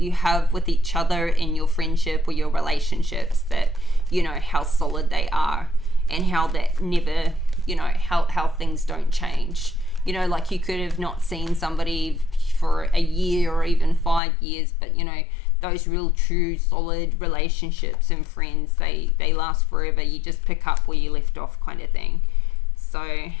have with each other in your friendship or your relationships, that, you know, how solid they are and how that never, you know, how things don't change. You know, like you could have not seen somebody for a year or even 5 years, but, you know, those real true solid relationships and friends, they last forever. You just pick up where you left off, kind of thing. So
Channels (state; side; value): drops out; right; at 14.2 s